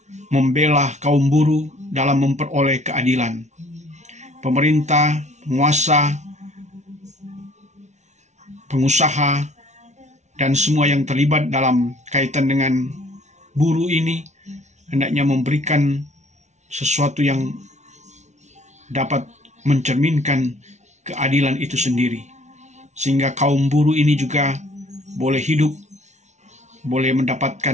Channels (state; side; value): late; left; 0.33 ms